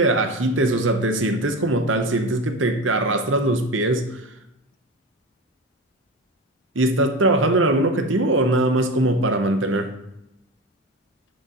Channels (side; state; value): both; normal; correlation 0.26